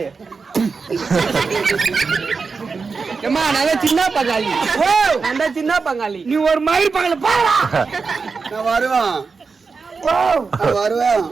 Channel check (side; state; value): left; quieter; 4.8 dB